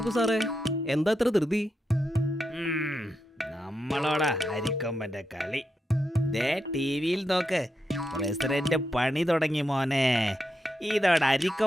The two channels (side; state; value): both; normal; correlation 0.85